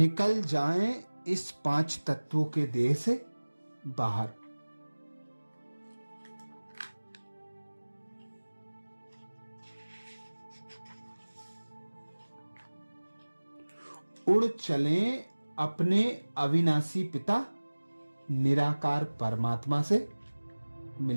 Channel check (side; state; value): both; inverted; correlation -1.00